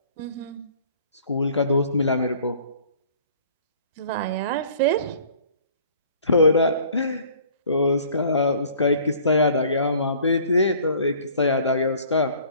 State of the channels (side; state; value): both; inverted; correlation -0.53